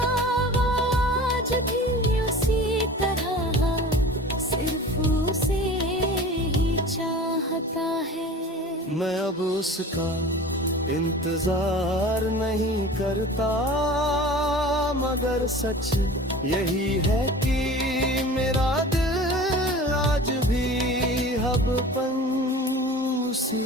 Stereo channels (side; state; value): both; normal; correlation 0.40